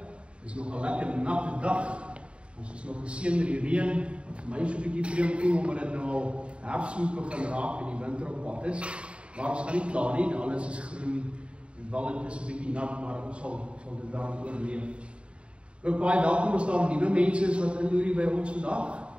is nog 'n lekker natte dag. Ons is nog geseën met die reën. Vir my is so 'n bietjie vreemd voel omdat dit nou al herfs moet begin raak en die winter op pad is. Maar ons gaan nie klaar nie, alles is groen en wel dit is 'n bietjie nat, maar ons sal dit dan oorleef. Ook baie welkom as daar nuwe mense is wat inloer by ons vandag.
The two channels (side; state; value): left; late; 0.058 ms